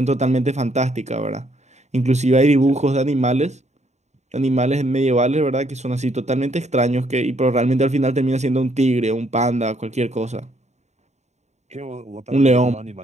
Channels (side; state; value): left; late; 0.33 ms